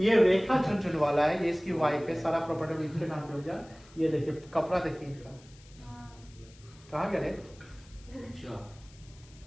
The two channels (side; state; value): left; noise; hiss, 25 dB below the sound